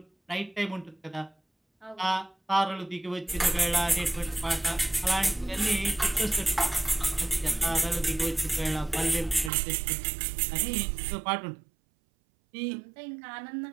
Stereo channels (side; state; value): left; drops out; at 9.5 s